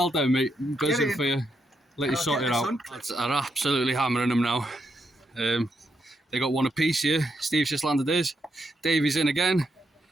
done, mate. Buzzing for you. Let you sort it out. Lads are absolutely hammering them now. They got 1 apiece here. Steve's just landed his. Davey's in again.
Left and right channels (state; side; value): normal; both; correlation 0.80